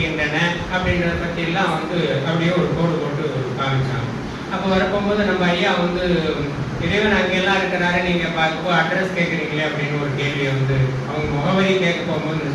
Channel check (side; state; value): both; identical; correlation 1.00